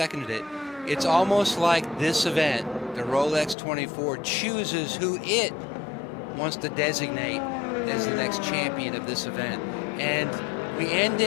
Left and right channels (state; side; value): drops out; right; at 3.6 s